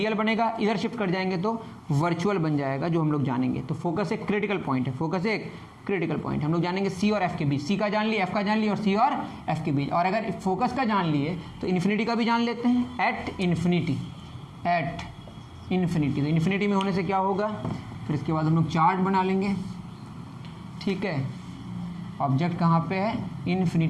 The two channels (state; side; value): identical; both; correlation 1.00